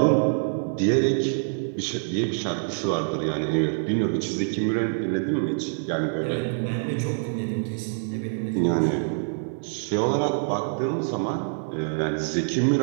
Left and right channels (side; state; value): left; silent; 55 dB below the other